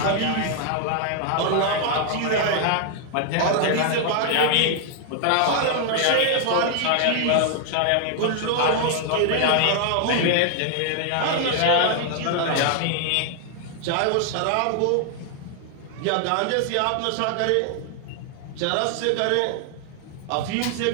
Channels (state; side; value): different; both; correlation 0.00